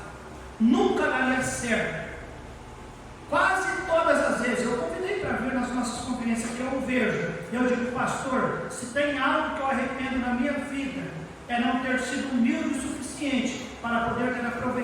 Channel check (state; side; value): identical; both; correlation 1.00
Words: nunca daria certo. Quase todas as vezes eu convidei para vir nas nossas conferências que eu vejo, eu digo: pastor, se tem algo que eu arrependo na minha vida, é não ter sido humilde o suficiente para poder ter